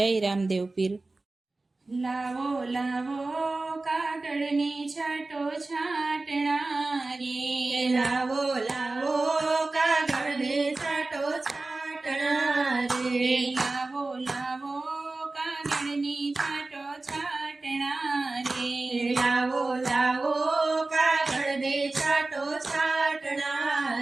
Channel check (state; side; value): quieter; left; 3.3 dB